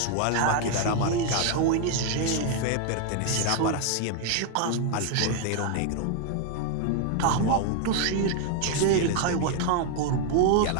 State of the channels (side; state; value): both; different; correlation 0.00